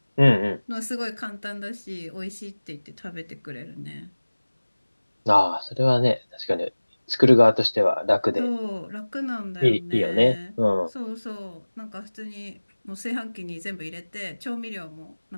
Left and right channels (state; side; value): inverted; both; correlation -1.00